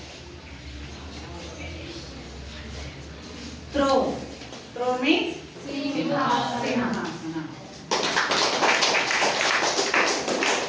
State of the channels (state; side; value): identical; both; correlation 1.00